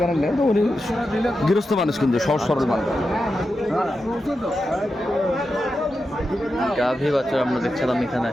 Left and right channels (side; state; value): both; normal; correlation 0.89